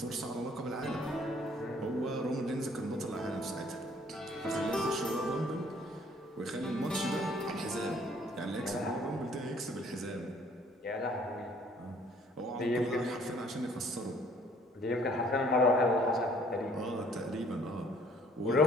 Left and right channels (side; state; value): both; normal; correlation 0.59